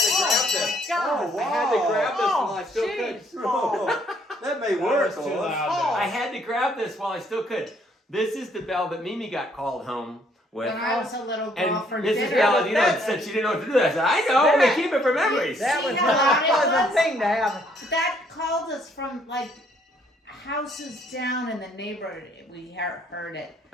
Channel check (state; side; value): normal; both; correlation 0.66